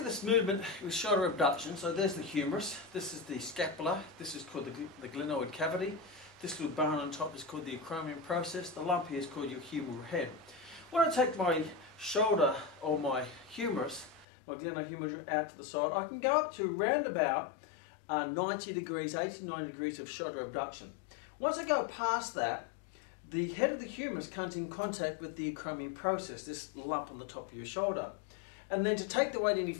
this movement with shoulder abduction, so there's the humerus, this is the scapula, this is called the glenoid cavity, this little bone on top is called the acromion process, the lump here is called your humeral head. When I take my shoulder or my humerus, my glenohumeral out to the side, I can go up to round about 90 degrees, 80 to 90 degrees of shoulder abduction. Once I go past that, the head of the humerus comes in contact with the acromion process, this lump on the top of your shoulder. And then to take the weight any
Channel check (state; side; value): drops out; right; at 14.2 s